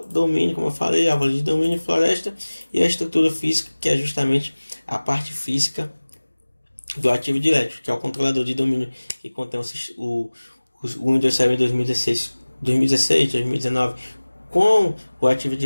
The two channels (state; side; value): inverted; both; correlation -1.00